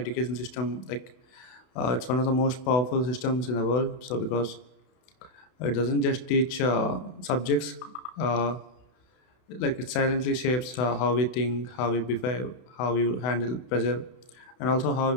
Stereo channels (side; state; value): right; late; 32 ms